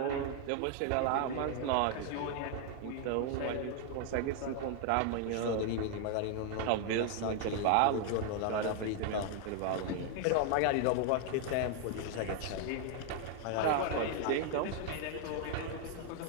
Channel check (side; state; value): both; different; correlation 0.00